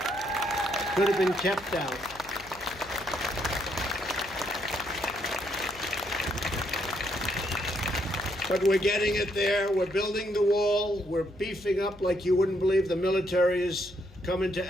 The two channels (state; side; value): noise; left; hum, 21 dB below the sound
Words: Could have been kept out. But we're getting it there. We're building the wall. We're beefing up like you wouldn't believe. The military is coming to